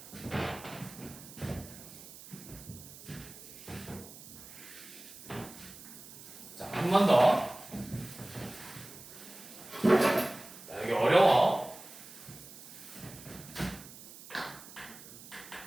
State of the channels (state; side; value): noise; right; hiss, 16 dB below the sound